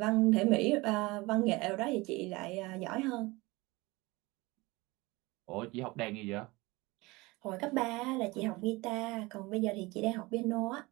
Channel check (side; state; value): left; quieter; 22.7 dB